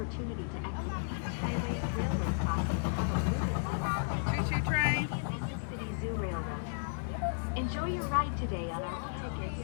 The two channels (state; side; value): silent; right; digital silence